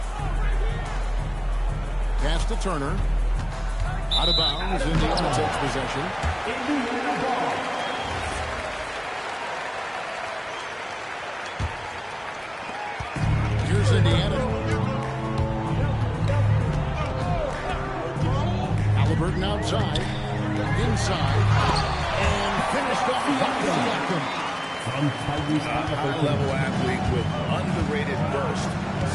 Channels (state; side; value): identical; both; correlation 1.00